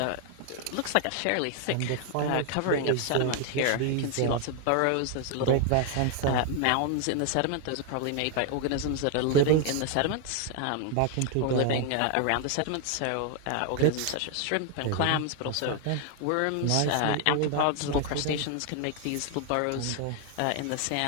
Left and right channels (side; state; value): both; different; correlation 0.00